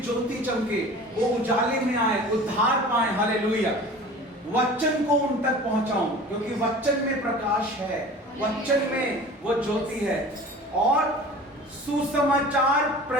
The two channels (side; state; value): both; normal; correlation 0.40